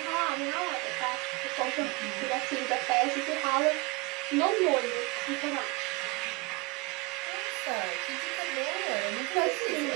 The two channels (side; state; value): left; quieter; 23.9 dB